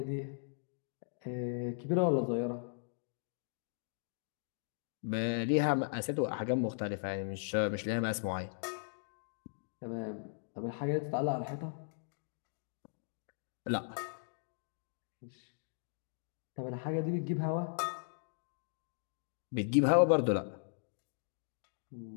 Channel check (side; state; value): right; silent; digital silence